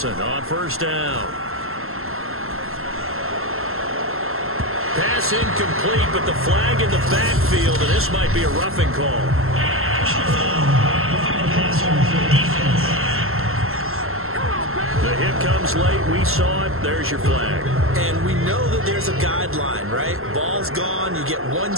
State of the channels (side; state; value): left; late; 0.62 ms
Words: on 1st down. Pass incomplete, but the flag in the backfield, and this might be a roughing call. The hit comes late. We saw it. There's your flag. And we know that there's a guideline, right? Ball's gone. You get 1